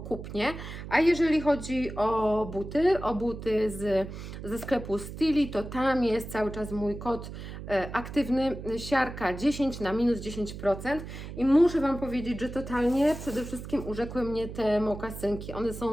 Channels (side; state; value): right; noise; hum, 10 dB below the sound